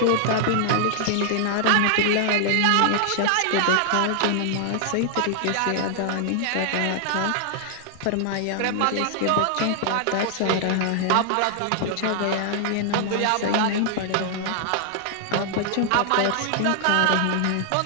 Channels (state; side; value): different; both; correlation 0.00